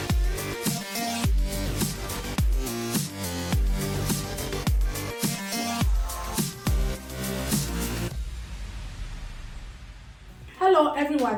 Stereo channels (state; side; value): identical; both; correlation 1.00